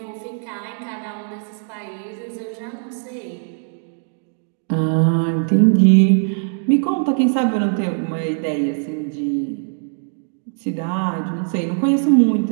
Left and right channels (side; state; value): left; silent; digital silence